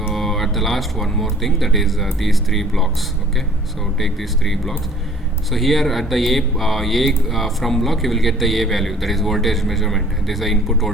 at the last, one more thing, that is these three blocks. Okay, so take these three blocks. So here at the A from block, you will get the A value, that is voltage measurement. This is the input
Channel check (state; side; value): normal; both; correlation 0.53